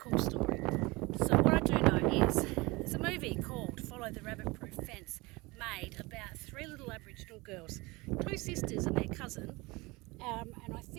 story. So what I do know is there's a movie called Follow the Rabbit-Proof Fence made about 3 little Aboriginal girls, 2 sisters and their cousin, and I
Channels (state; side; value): quieter; left; 23.4 dB